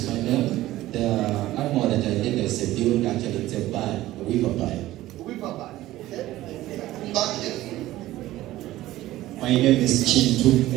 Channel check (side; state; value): left; quieter; 15.8 dB